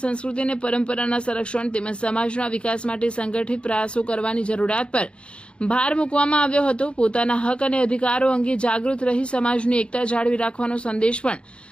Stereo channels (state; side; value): late; right; 0.057 ms